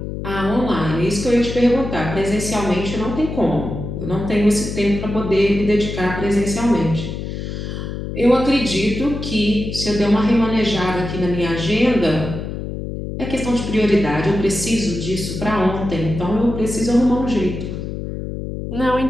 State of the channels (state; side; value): noise; left; hum, 6 dB below the sound